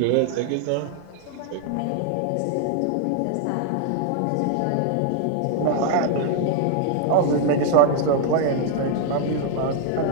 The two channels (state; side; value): different; both; correlation 0.00